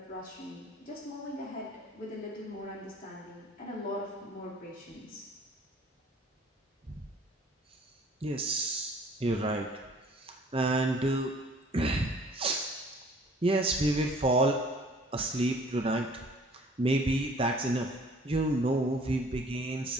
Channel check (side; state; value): both; normal; correlation 0.53